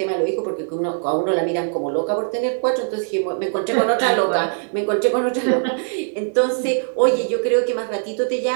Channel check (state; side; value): silent; left; digital silence